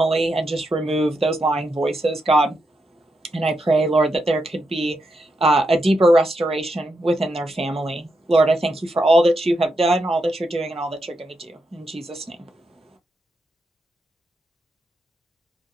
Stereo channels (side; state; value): both; normal; correlation 0.83